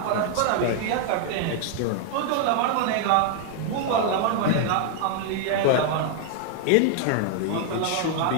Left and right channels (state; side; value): different; both; correlation 0.00